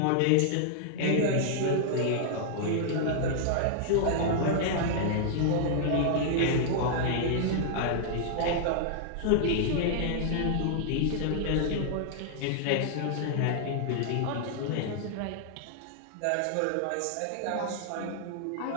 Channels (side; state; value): both; different; correlation -0.01